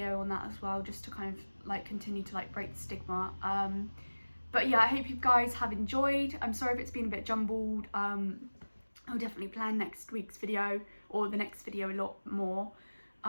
on that as well, just to kind of like continue to like break the stigma. But yeah, I hope you guys have enjoyed. I'm sorry if it's been a bit jumbled. I'll definitely plan next week's video or the next video a lot more,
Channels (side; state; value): both; inverted; correlation -1.00